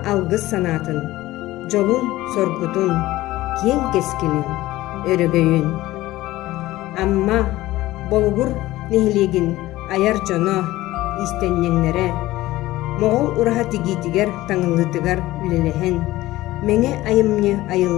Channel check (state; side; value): quieter; right; 17.0 dB